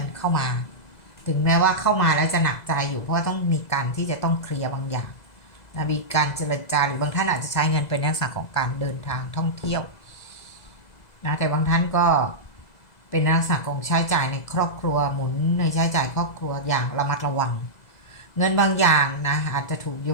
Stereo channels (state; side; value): late; right; 2.0 ms